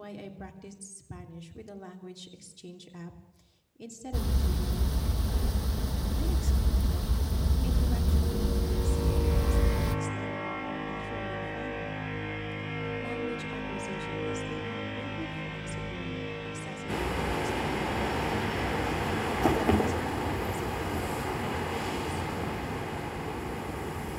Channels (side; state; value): both; identical; correlation 1.00